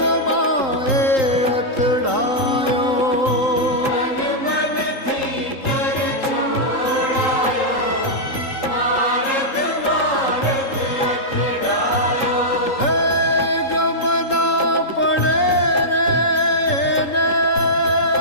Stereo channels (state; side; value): late; right; 3.8 ms